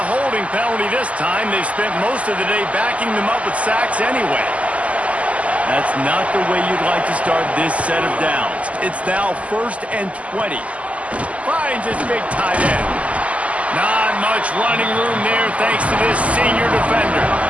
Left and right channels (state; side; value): late; left; 0.067 ms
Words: holding penalty this time. They've spent most of the day backing them up with sacks anyway. That's not the way you'd like to start this set of downs. It's now 1st and 20. Finds his big tight end. Not much running room there thanks to this senior defender.